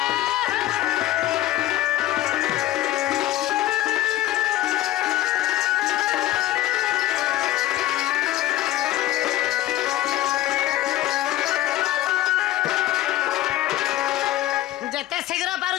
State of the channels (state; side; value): quieter; right; 14.7 dB